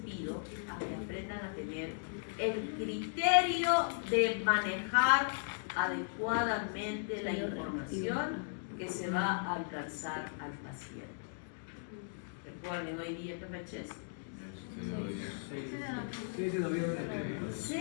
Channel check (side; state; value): right; silent; digital silence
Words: a que aprendan a tener el criterio de manejar adecuadamente la información que se va a alcanzar al paciente. Recuerden, hoy día, ¿qué fecha es? 6 de noviembre.